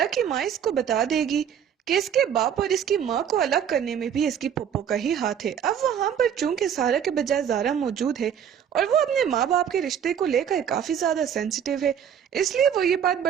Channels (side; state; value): left; quieter; 8.6 dB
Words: की माँ इसको बता देगी कि इसके बाप और इसकी माँ को अलग करने में भी इसकी पप्पो का ही हाथ है। अब वहाँ पर चूंकि सारा के बजाय ज़ारा मौजूद है और वो अपने माँ बाप के रिश्ते को लेकर काफी ज्यादा सेंसिटिव है, इसलिए वो ये बात